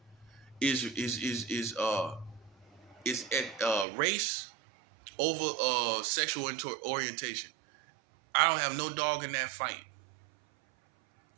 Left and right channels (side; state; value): left; drops out; at 3.9 s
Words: is race over sexual orientation. I don't have no dog in that fight.